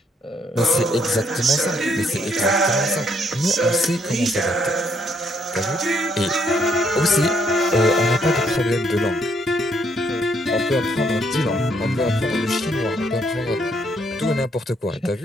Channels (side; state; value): both; normal; correlation 0.70